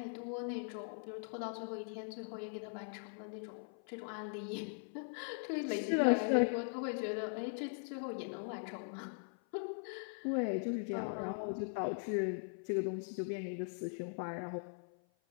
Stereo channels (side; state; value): right; silent; 51 dB below the other